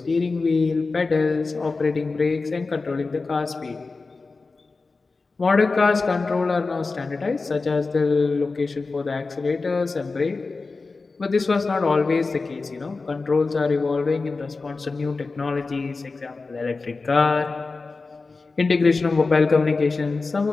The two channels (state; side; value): quieter; right; 3.9 dB